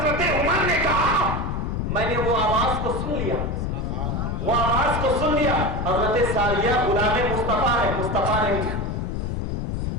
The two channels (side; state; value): left; noise; rumble, 1 dB below the sound